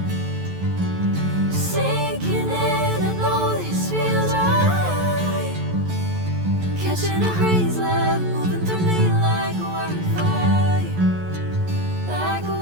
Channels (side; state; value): left; late; 11 ms